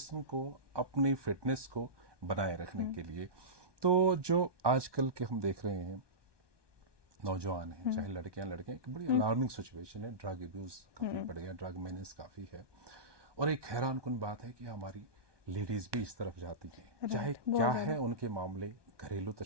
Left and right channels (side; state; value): left; late; 1.2 ms